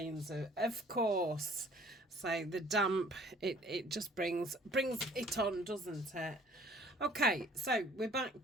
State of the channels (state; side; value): normal; both; correlation 0.55